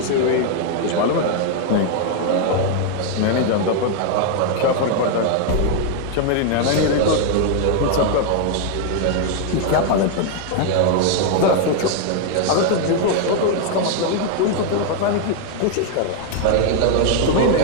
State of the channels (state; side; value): different; both; correlation 0.00